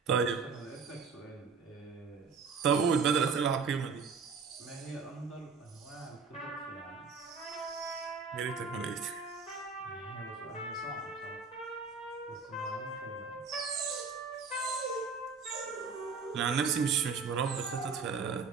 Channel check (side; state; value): left; quieter; 5.2 dB